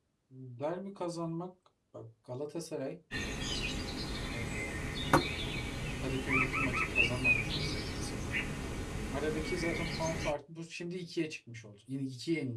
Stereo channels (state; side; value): identical; both; correlation 1.00